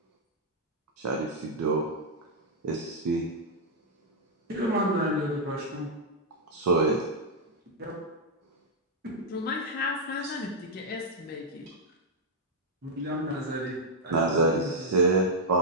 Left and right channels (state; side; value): normal; both; correlation -0.04